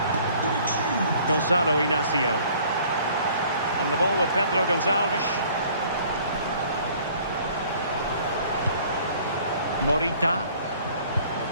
Gonzalo Inacio. On the ball with Pedro Gonçalves. Morita.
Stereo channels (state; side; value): inverted; both; correlation -0.55